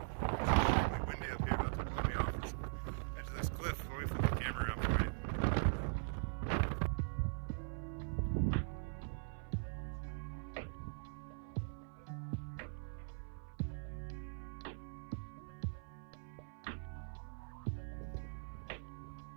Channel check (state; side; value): silent; left; 50 dB below the other